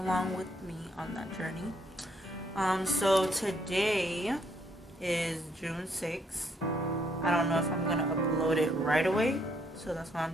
with me on that journey. So today is June 6th. I don't know if I'm gonna upload it right away, so that's why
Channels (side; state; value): both; normal; correlation 0.71